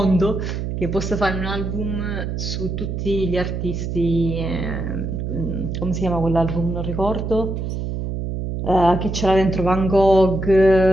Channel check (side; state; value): right; noise; hum, 4 dB below the sound